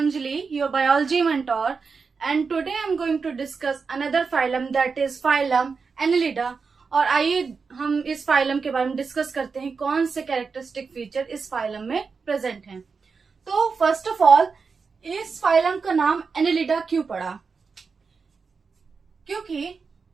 your biology mentor, and today I'm going to discuss another phylum that is phylum Annelida। और आइए हम इस phylum के बारे में डिस्कस करते हैं कौन से कैरेक्टरिस्टिक फीचर इस फाइलम में प्रेजेंट हैं। तो फर्स्ट ऑफ ऑल इस फाइलम का नाम एनेलिडा क्यों पड़ा? क्योंकि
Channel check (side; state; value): left; quieter; 5.1 dB